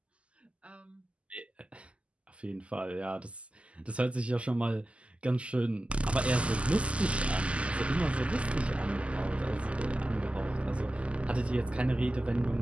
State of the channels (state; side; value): late; left; 0.058 ms